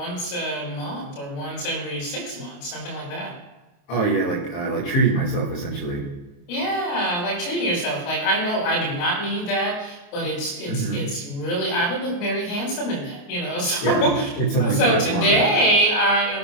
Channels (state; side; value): late; right; 28 ms